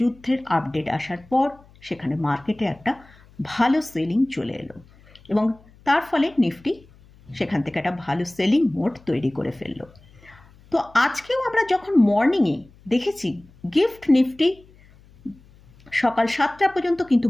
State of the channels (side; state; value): left; noise; hum, 26 dB below the sound